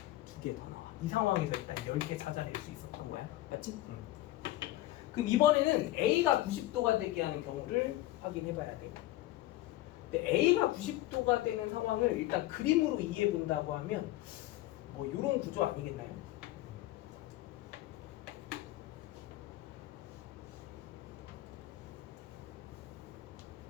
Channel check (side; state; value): right; quieter; 16.1 dB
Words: 2개 더 나와. 이 상황에서 일단 10개 찾아낼 수 있었던 거야. 맞지? 그럼 이번에는 A가 90도가 되게 하는 경우를 확인해 봐야 돼. 근데 A가 90도가 되는 상황을 일단 그림으로 이해해 본다고 하면 뭐 이런 구조 아니겠나요?